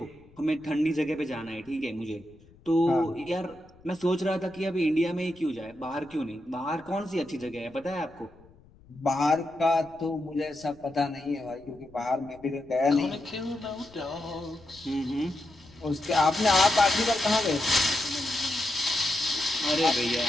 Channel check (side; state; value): left; noise; rumble, 26 dB below the sound